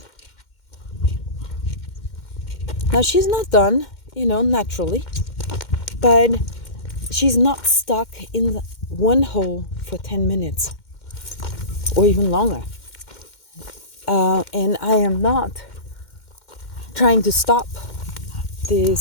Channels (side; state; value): right; late; 2.1 ms